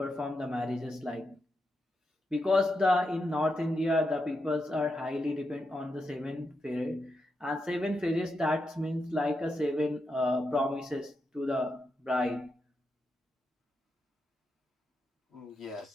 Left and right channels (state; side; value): normal; both; correlation 0.86